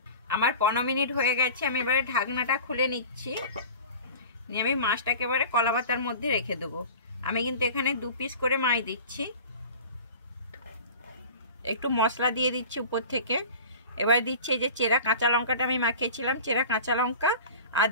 আমার 15 মিনিট হয়ে গেছে। আমি এবারে ঢাকনাটা খুলে নিচ্ছি, নিয়ে আমি মাছটাকে এবারে কলা পাতার মধ্যে রেখে দেবো। আমি কিন্তু এখানে 2 পিস করে মাছ দিচ্ছি। একটু মশলা দিয়ে দিচ্ছি উপর থেকে। এবার দিচ্ছি এই যে চেরা কাঁচা লঙ্কাটা আমি মাখিয়েছিলাম, চেরা কাঁচা লঙ্কা, আর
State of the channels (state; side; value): inverted; both; correlation -0.39